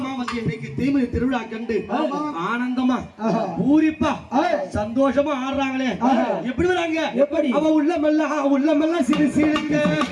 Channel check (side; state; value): both; identical; correlation 1.00